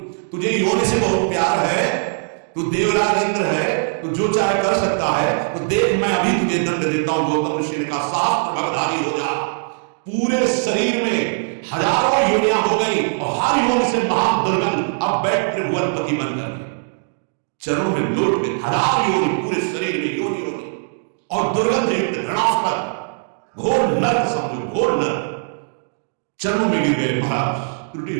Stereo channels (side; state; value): left; silent; digital silence